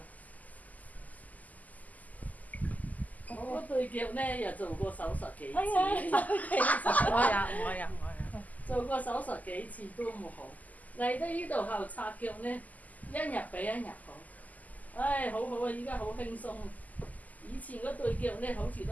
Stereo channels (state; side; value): late; right; 0.078 ms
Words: 我嗰對腳呢又做過手術幾次，做過手術幾次都冇好。嚟到呢度後拆腳呢，一日比一日好。唉，好好啊！依家好輕鬆。以前嗰對腳呢，好似